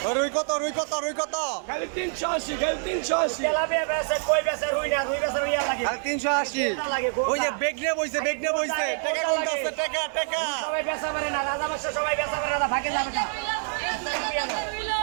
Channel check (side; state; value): left; silent; 61 dB below the other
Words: রুই কত? রুই কত? রুই কত? খালি 380, খালি 380। তেলাপিয়া বেচে, কই বেচে, রুই না, রুই বেচে রুইয়া লাগে। খালি 380। ওই যে বেগনে বইছে, বেগনে বইছে। টাকা কোনটা আছে? টাকা টাকা সবাই বেচা পারে না, রাজা বাদশা সবাই বেচা পারে না, ভাগে যাবে না।